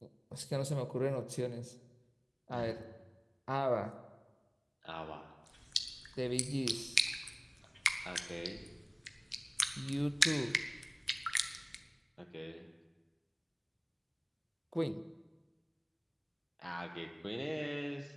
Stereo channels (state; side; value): identical; both; correlation 1.00